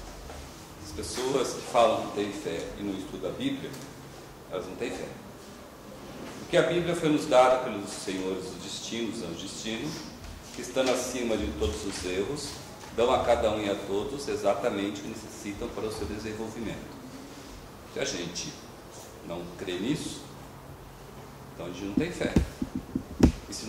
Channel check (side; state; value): both; identical; correlation 1.00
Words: As pessoas que falam que têm fé e não estudam a Bíblia, elas não têm fé. Porque a Bíblia foi nos dada pelos senhores dos destinos, anjos de destino, que estando acima de todos os erros, dão a cada um e a todos exatamente o que necessitam para o seu desenvolvimento. Se a gente não crê nisso, então a gente não tem fé. E se